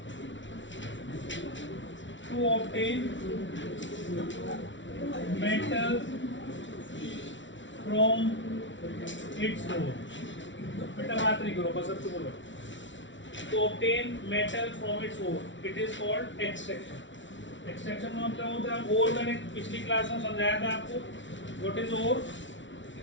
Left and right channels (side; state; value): right; late; 0.55 ms